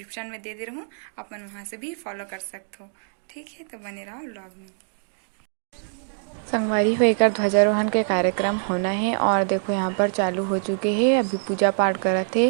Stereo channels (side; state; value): left; silent; digital silence